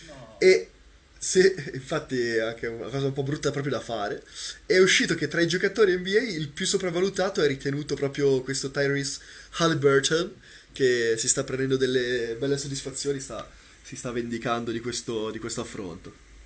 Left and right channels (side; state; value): both; identical; correlation 1.00